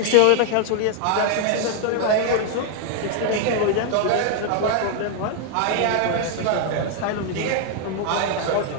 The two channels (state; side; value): different; both; correlation 0.00